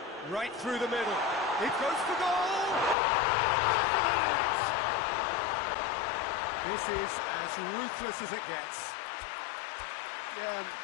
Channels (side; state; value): right; drops out; at 3.0 s